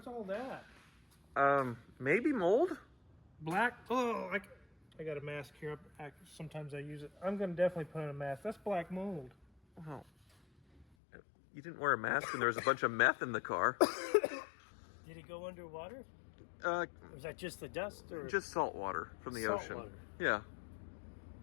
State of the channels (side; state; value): right; drops out; at 10.9 s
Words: What's all that? Maybe mold? Black? Oh, I got a mask here. Sometimes I use it. I'm going to definitely put on a mask. That's black mold. Oh. You didn't wear a mask and there was a bunch of meth in the car. Did it go underwater? Or was that just the dust? Or just salt water from the ocean. Water. Yeah.